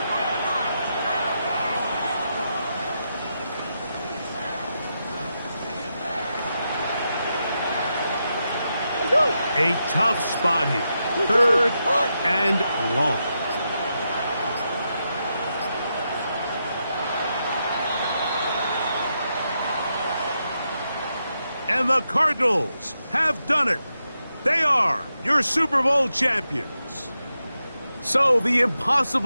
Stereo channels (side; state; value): both; inverted; correlation -0.85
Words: A tough spot here. 3rd and long. And the Cardinals have done it. They are your Super Bowl champions. So the